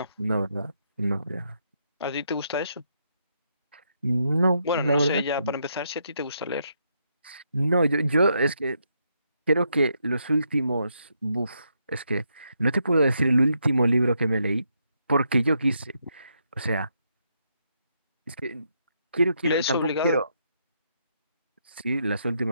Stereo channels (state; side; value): inverted; both; correlation -0.78